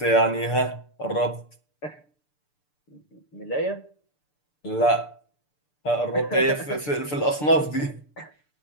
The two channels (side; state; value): right; late; 6.8 ms